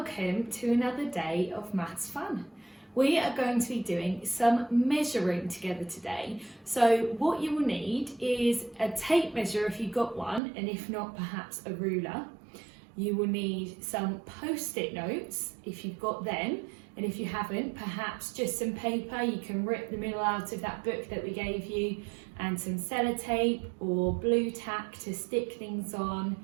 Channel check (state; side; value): drops out; left; at 10.4 s